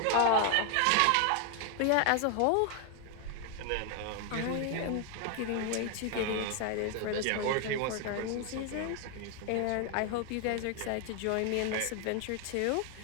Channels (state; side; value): different; both; correlation 0.00